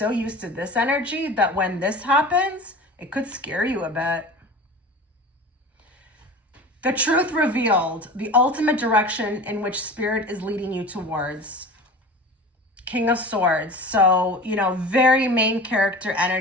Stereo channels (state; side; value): normal; both; correlation 0.36